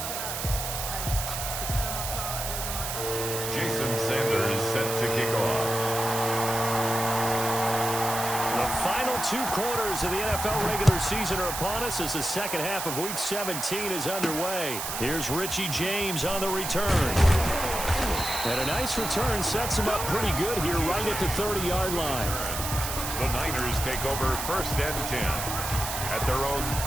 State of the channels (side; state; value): right; noise; hiss, 4 dB below the sound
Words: Jason Sanders set to kick off. The final 2 quarters of the NFL regular season are upon us as the second half of Week 17 is underway. Here's Richie James on the return. And a nice return sets him up pretty good here right at the 30-yard line. The Niners take over 1st and 10 at their own